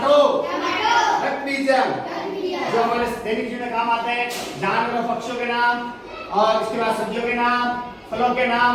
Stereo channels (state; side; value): identical; both; correlation 1.00